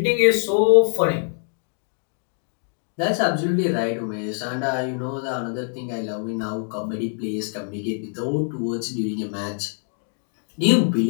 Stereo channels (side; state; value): right; silent; 57 dB below the other